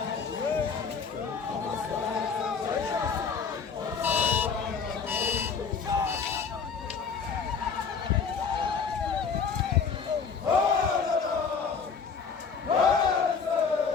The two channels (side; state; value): right; quieter; 5.8 dB